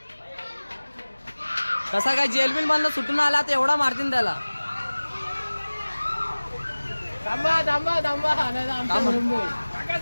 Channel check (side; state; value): both; inverted; correlation -1.00